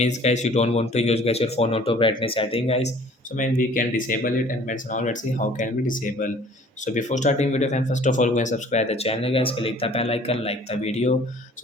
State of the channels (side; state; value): both; normal; correlation 0.52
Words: guys you don't want to use guys your phone auto brightness setting guys. So man we can disable it, and friends now let's see how can we disable. So before starting video friend, first of all go and subscribe the channel guys. Click the bell icon, like the video.